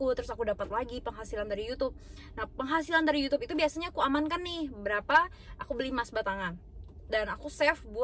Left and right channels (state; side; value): identical; both; correlation 1.00